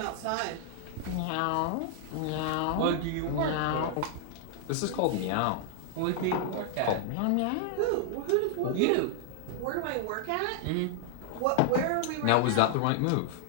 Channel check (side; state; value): both; different; correlation 0.00